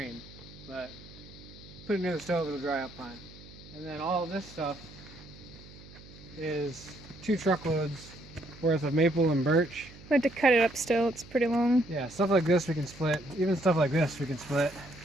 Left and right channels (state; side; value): noise; right; hum, 19 dB below the sound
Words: but put it near the stove, it'll dry up fine. And then all of this stuff is 2 truckloads worth of maple and birch. We have to cut it up still, it's pretty long. Yeah, stuff like this we can split. Even stuff like this we can split.